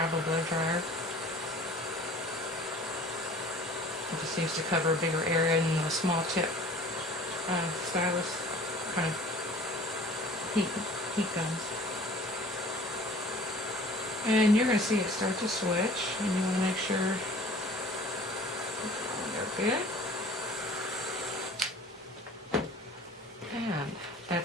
blow dryer. It just seems to cover a bigger area than the small tip stylus kind of heat guns. And you're going to see it start to switch, and you want to make sure they're good. And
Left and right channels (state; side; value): normal; both; correlation 0.47